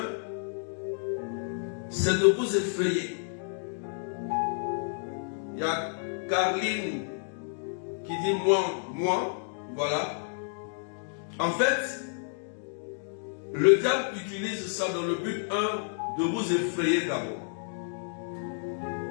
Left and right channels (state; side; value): silent; right; digital silence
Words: c'est de vous effrayer. Il y a Carline qui dit moi, voilà. En fait, le diable utilise ça dans le but, de vous effrayer d'abord.